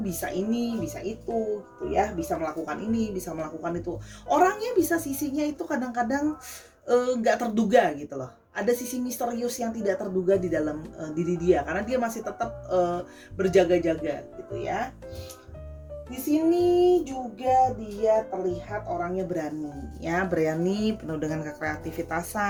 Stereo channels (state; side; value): identical; both; correlation 1.00